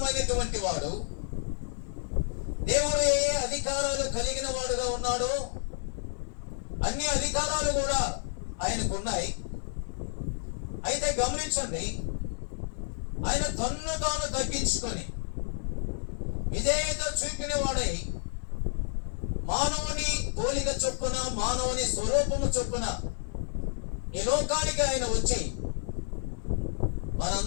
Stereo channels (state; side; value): silent; right; digital silence